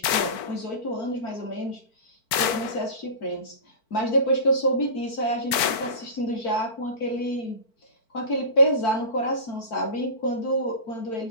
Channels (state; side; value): late; right; 4.5 ms